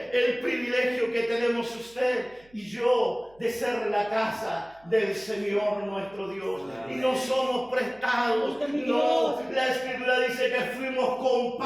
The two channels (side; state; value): right; noise; hum, 29 dB below the sound